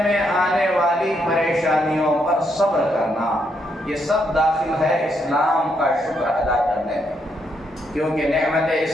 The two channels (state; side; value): normal; both; correlation 0.77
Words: میں آنے والی پریشانیوں پر صبر کرنا, یہ سب داخل ہے اسلام کا شکر ادا کرنے میں. کیونکہ نعمت